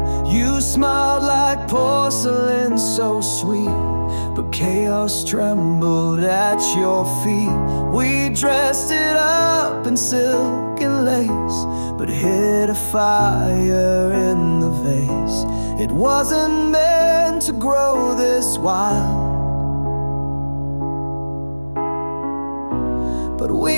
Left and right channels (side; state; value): both; inverted; correlation -1.00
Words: You smiled like porcelain, so sweet, but chaos trembled at your feet. We dressed it up in silk and lace, but hid a fire in the vase. It wasn't meant to grow this wild, but